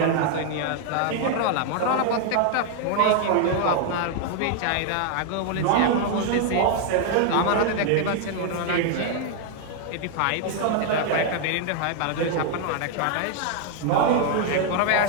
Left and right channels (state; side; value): different; both; correlation 0.00